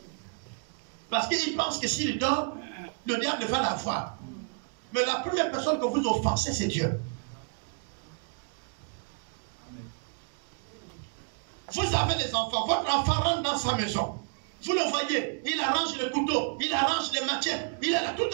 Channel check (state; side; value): quieter; left; 38.2 dB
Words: Parce qu'ils pensent que s'il dort, le diable va la voir. Mais la première personne que vous offensez, c'est Dieu. Vous avez les enfants, votre enfant rentre dans sa maison. Vous le voyez, il arrange le couteau, il arrange les matières, il est là toute